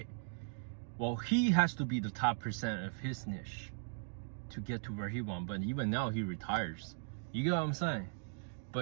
Well, he has to be the top % of his niche to get to where he wants. But even now, he retires. You get what I'm saying?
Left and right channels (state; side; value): silent; left; digital silence